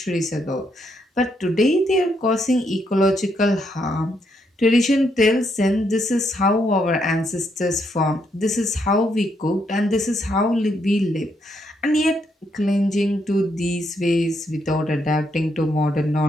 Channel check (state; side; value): normal; both; correlation 0.76